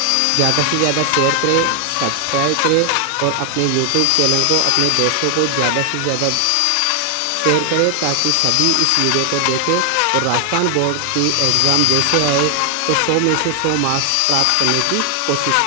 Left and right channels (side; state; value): both; different; correlation 0.00